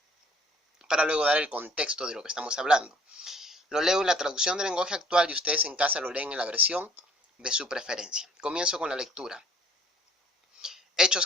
Para luego dar el contexto de lo que estamos hablando. Lo leo en la traducción del lenguaje actual y ustedes en casa lo leen en la versión de su preferencia. Comienzo con la lectura. Hechos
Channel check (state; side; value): normal; both; correlation 0.56